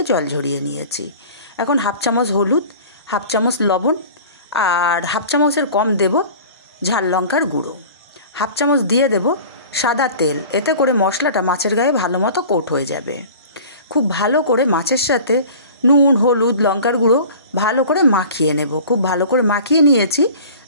জল ঝরিয়ে নিয়েছি। এখন হাফ চামচ হলুদ, হাফ চামচ লবণ আর হাফ চামচের কম দেব ঝাল লঙ্কার গুঁড়ো, হাফ চামচ দিয়ে দেব সাদা তেল। এতে করে মশলাটা মাছের গায়ে ভালো মতো কোট হয়ে যাবে। খুব ভালো করে মাছের সাথে নুন, হলুদ, লঙ্কার গুঁড়ো ভালো করে মাখিয়ে নেব। খুব ভালো করে মাখিয়ে নিয়েছি।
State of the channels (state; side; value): inverted; both; correlation -0.41